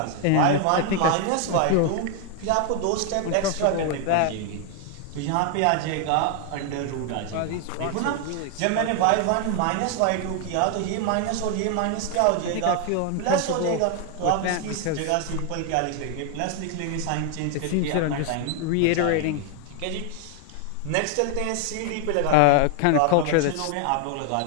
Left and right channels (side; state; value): both; different; correlation 0.00